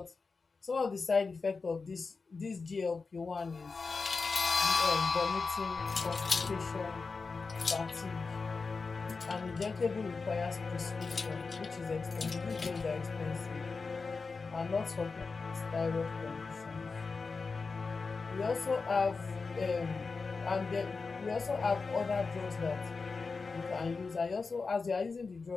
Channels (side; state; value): right; quieter; 4.4 dB